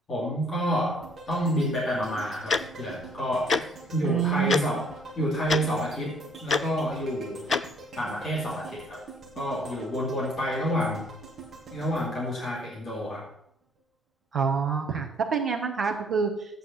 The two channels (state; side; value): normal; both; correlation 0.61